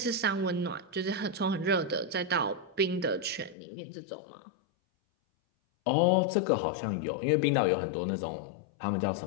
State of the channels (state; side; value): drops out; right; at 3.6 s